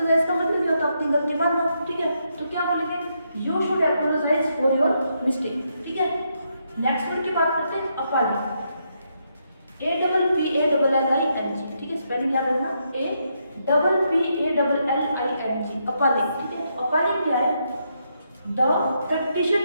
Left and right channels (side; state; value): both; inverted; correlation -0.79